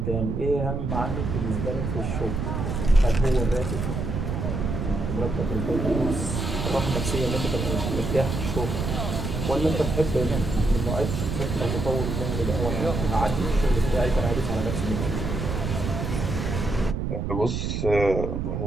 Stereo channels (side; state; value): right; noise; rumble, 2 dB below the sound